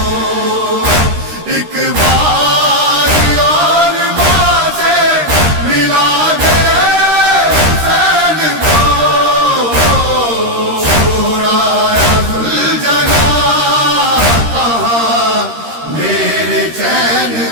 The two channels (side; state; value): left; late; 13 ms